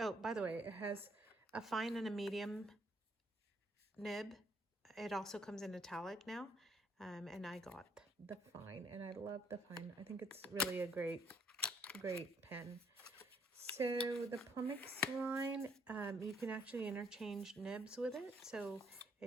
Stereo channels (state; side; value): normal; both; correlation 0.68